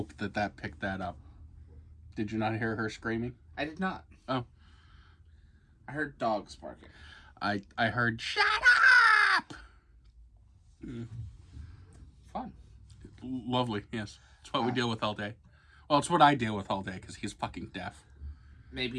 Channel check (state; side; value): identical; both; correlation 1.00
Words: that picked that up. Did you not hear her screaming? I did not. Oh. I heard dogs barking. I heard, shut up! Fun. Lovely, yes. It's what we deal with all day. Well, it's what I deal with all day, because he's fucking deaf.